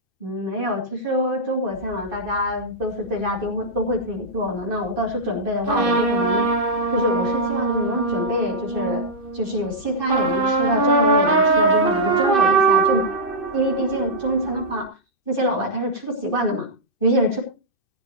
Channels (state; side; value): late; right; 2.6 ms